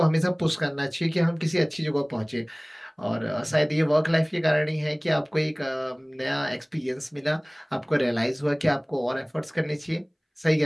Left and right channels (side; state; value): both; identical; correlation 1.00